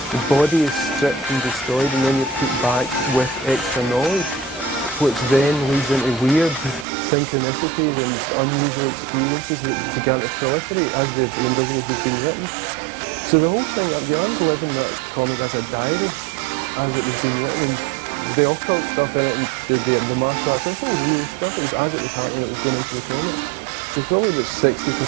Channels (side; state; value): left; drops out; at 6.9 s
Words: The body is stripped and destroyed, and then you're put back with extra knowledge, which then leads into weird synchronicities and unusual experiences that began to proliferate as the Invisibles was being written. So the whole thing, Bjorn's living that comic as a diary, as it was being written, and the occult stuff in it, and the martial arts, this all real stuff. It was as it was happening, it was going into the comic. So probably about